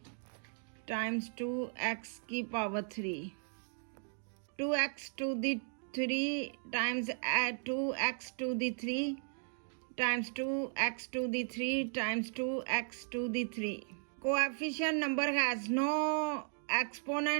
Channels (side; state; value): left; silent; 54 dB below the other